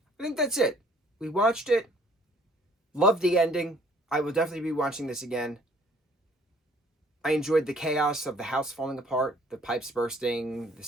I think that's it. We watched it. Loved the ending. I will definitely be watching this again. I enjoyed the chaos of the house falling apart, the pipes bursting, the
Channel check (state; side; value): normal; both; correlation 0.58